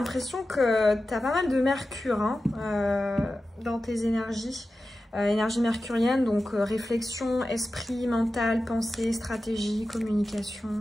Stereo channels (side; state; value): both; normal; correlation 0.93